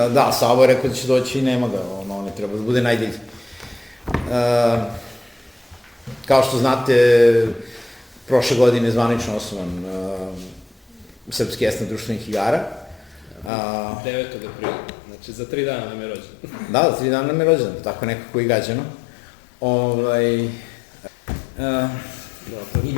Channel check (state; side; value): drops out; right; at 13.5 s